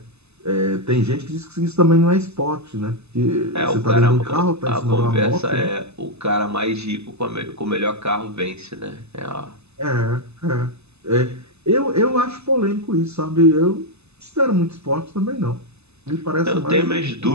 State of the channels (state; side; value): late; left; 0.80 ms